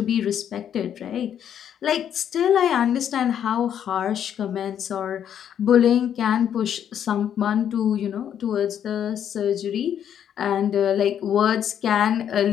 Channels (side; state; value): right; quieter; 9.3 dB